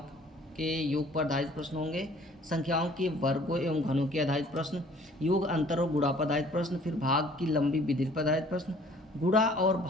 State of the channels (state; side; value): normal; both; correlation 0.55